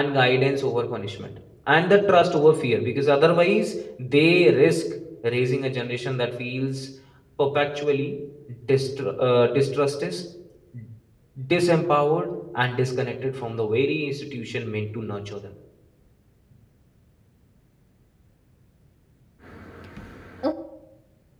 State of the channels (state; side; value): identical; both; correlation 1.00